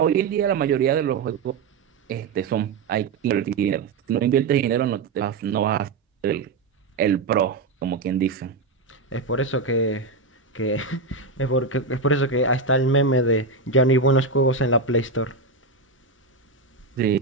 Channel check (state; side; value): quieter; left; 4.0 dB